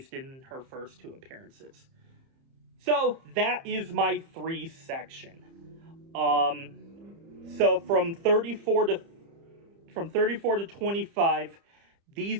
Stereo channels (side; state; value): left; late; 30 ms